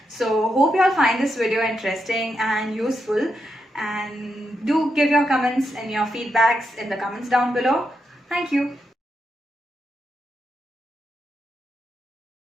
So hope you all find this video interesting and useful, and do give your comments and your feedbacks in the comments down below. Thank you.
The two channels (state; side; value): normal; both; correlation 0.84